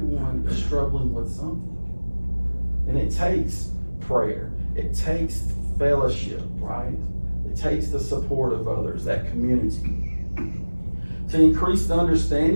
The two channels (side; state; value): both; inverted; correlation -1.00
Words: is struggling with something. And it takes prayer. It takes fellowship, right? It takes the support of others, that community. to increase the